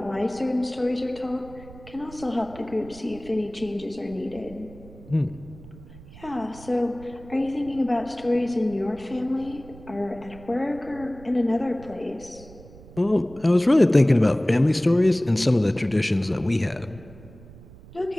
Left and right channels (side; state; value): right; noise; rumble, 19 dB below the sound